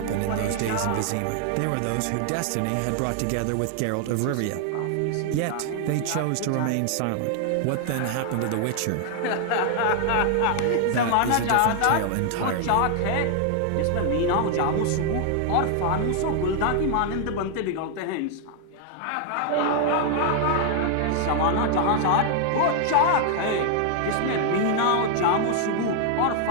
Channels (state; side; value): different; both; correlation 0.00